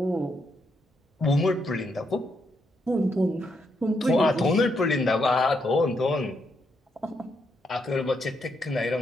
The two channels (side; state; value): both; normal; correlation 0.78